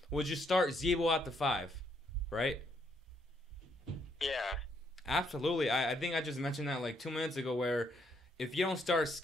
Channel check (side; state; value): both; normal; correlation 0.73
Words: would you start Zebo at the 5, right? Yeah. Absolutely. I think I just mentioned that like 2 minutes ago where if you don't start